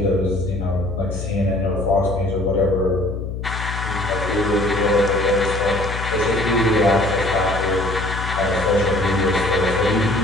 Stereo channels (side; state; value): left; noise; hum, 6 dB below the sound